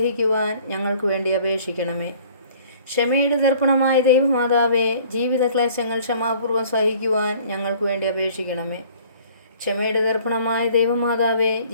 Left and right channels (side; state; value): both; inverted; correlation -0.53